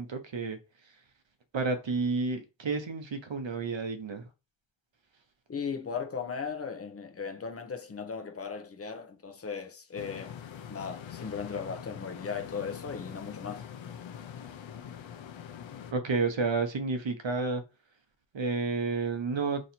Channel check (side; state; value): both; normal; correlation -0.04